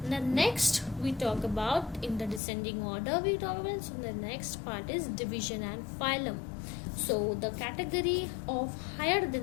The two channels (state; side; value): drops out; right; at 2.4 s